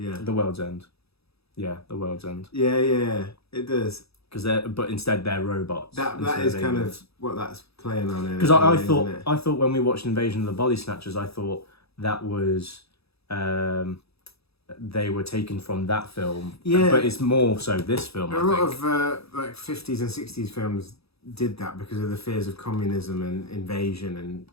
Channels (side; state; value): right; late; 0.77 ms